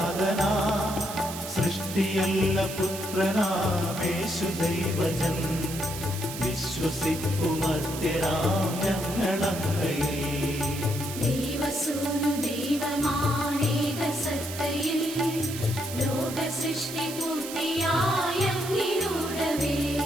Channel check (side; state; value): right; noise; hiss, 9 dB below the sound